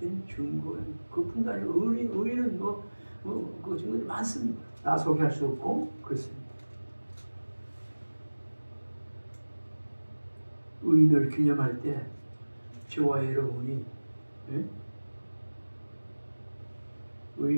증거예요. 그뿐도 아니고 의인은 그 증거들이 많습니다. 다 소개할 수 없고 그렇습니다. 의인을 기념할 때 저와 여러분이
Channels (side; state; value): both; inverted; correlation -1.00